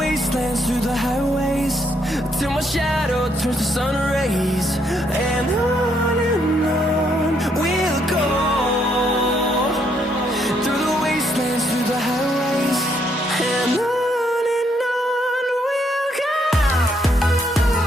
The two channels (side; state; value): both; normal; correlation 0.73